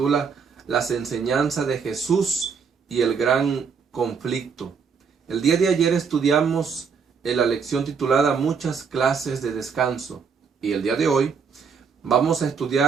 Las enseñanzas de Jesús y el gran conflicto. El día de ayer estudiamos la lección titulada Muchas clases de descanso. Y el día de hoy vamos a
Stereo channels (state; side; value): quieter; left; 5.9 dB